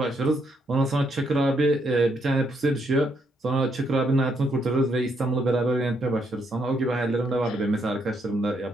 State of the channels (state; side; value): normal; both; correlation 0.75